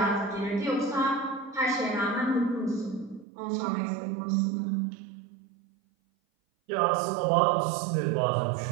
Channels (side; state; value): left; drops out; at 3.2 s